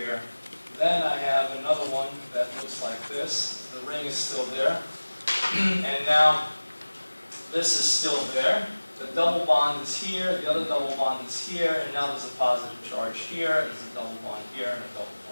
then I have another one that looks like this. The ring is still there. And now this is still there. The double bond is here, the other double bond is here, and now there's a positive charge here, there's a double bond here, and a double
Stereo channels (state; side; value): inverted; both; correlation -1.00